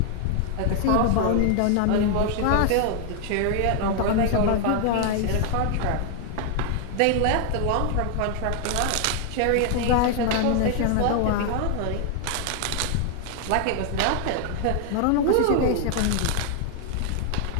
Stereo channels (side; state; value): both; different; correlation 0.00